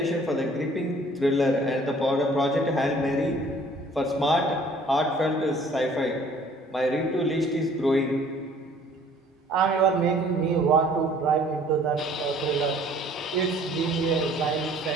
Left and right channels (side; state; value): both; normal; correlation 0.55